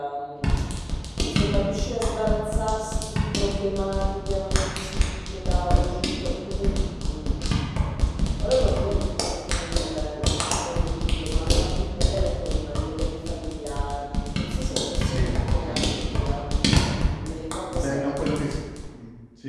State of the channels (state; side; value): identical; both; correlation 1.00